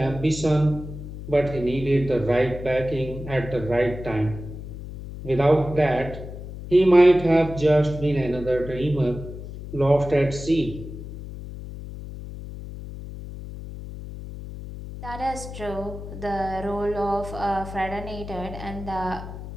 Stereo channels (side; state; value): left; noise; hum, 11 dB below the sound